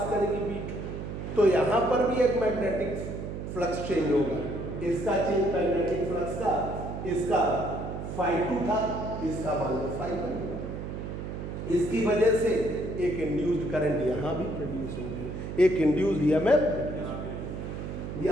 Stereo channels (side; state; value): right; noise; hum, 6 dB below the sound